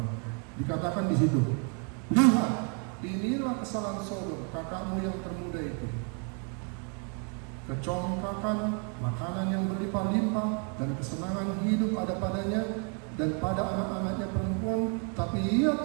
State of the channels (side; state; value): left; quieter; 39.3 dB